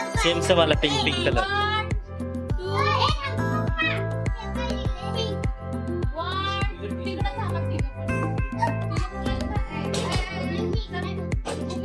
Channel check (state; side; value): identical; both; correlation 1.00